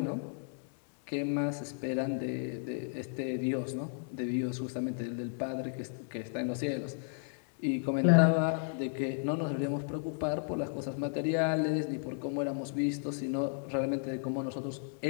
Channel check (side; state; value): right; silent; digital silence